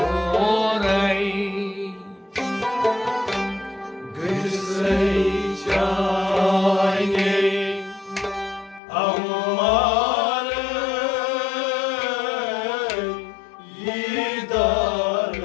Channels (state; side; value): drops out; right; at 8.8 s